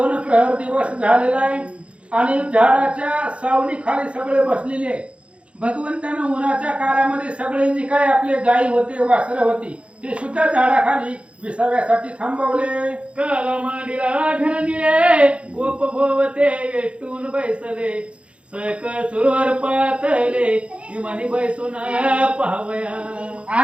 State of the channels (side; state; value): left; late; 0.060 ms